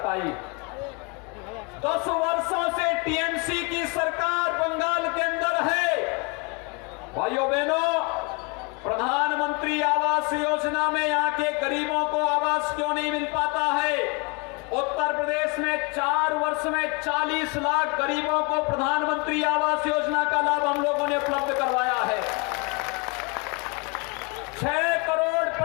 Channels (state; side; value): quieter; right; 31.0 dB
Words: 10 वर्षों से टीएमसी की सरकार बंगाल के अंदर है। भाइयों बहनों, प्रधानमंत्री आवास योजना में यहाँ के गरीबों को आवास क्यों नहीं मिल पाता है? उत्तर प्रदेश में 4 वर्ष में 40 लाख गरीबों को प्रधानमंत्री आवास योजना का लाभ हम लोगों ने उपलब्ध करवाया है। 6 करोड़